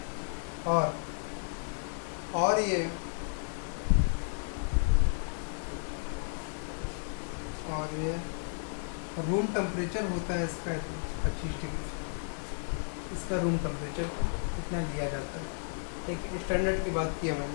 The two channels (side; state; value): right; silent; 56 dB below the other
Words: है। और ये रूम टेम्परेचर होता है इसका 25 डिग्री। इसका रूम टेम्परेचर इतना लिया जाता है। एक स्टैंडर्ड की बात की है